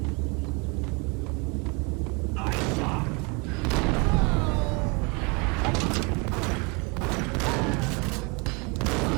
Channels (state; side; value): quieter; left; 29.8 dB